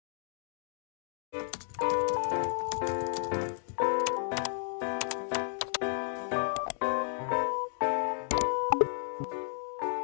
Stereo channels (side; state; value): right; silent; digital silence